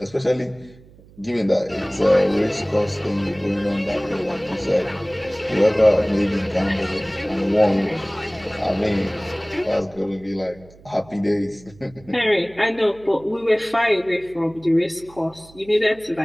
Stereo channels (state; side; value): noise; right; hum, 24 dB below the sound